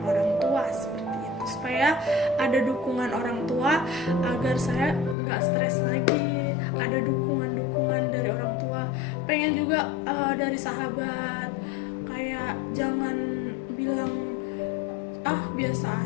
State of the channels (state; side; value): drops out; right; at 5.2 s